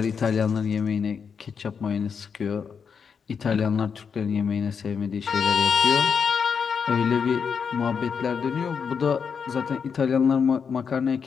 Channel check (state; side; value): quieter; right; 6.4 dB